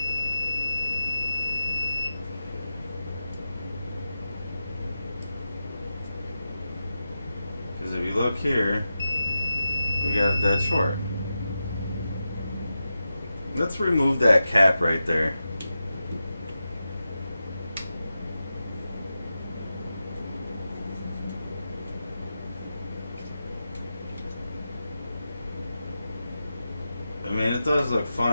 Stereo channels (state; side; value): inverted; both; correlation -0.91